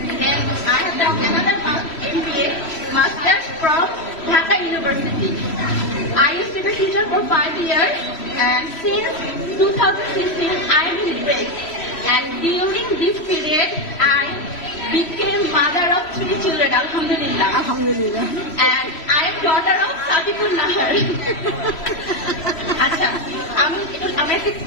Then I have done another MBA masters from Dhaka University. I used to be a teacher for 5 years, and since 2016 I am in break. And during this period, I became mother of 3 children, Alhamdulillah. আলহামদুলিল্লাহ। And I am daughter of Sadipur Nahar. আচ্ছা, আমি একটা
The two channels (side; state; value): right; late; 3.1 ms